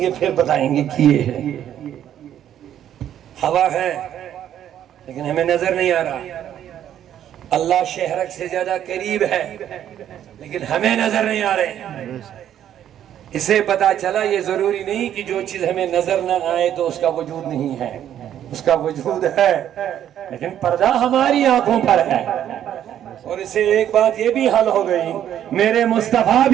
گے پھر بتائیں گے کہ یہ ہے۔ ہوا ہے لیکن ہمیں نظر نہیں آ رہا، اللہ شہرک سے زیادہ قریب ہے لیکن ہمیں نظر نہیں آ رہے۔ اسے پتا چلا یہ ضروری نہیں کہ جو چیز ہمیں نظر نہ آئے تو اس کا وجود نہیں ہے، اس کا وجود ہے، لیکن پردہ ہماری آنکھوں پر ہے۔ اور اسے ایک بات یہ بھی حل ہو گئی، میرے مصطفیٰ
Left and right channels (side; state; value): left; quieter; 10.6 dB